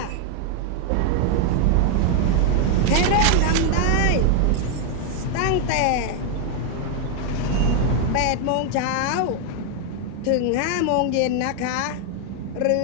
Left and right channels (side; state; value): both; different; correlation 0.00